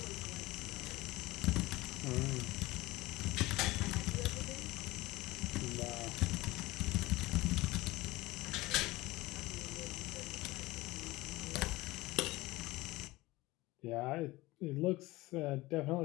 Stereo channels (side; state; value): right; quieter; 19.8 dB